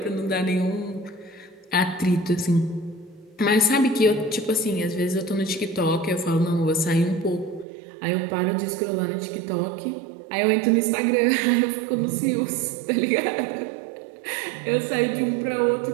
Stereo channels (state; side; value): drops out; left; at 7.7 s